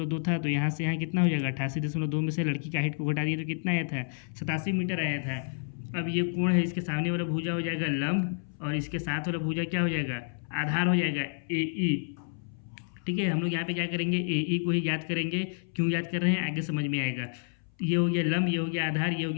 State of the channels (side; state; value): right; silent; 58 dB below the other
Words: था, तो यहाँ से यहाँ कितना हो जाएगा 88.2 में से लड़की का हाइट को घटा दिए तो कितना आया था 87 मीटर आया था। अब ये कोण है, इसके सामने वाला भुजा हो जाएगा लंब और इसके साथ वाला भुजा क्या हो जाएगा आधार हो जाएगा ए ई, ठीक है। हम लोग यहाँ पे क्या करेंगे ए ई को ही याद करेंगे। क्यों याद कर रहे हैं आगे समझ में आएगा। ये हो गया लंब, ये हो गया आधार, ये हो